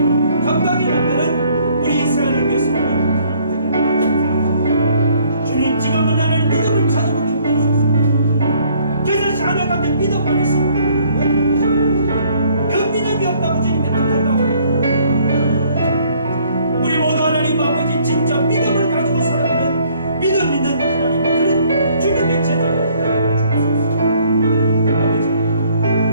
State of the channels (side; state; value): both; inverted; correlation -0.62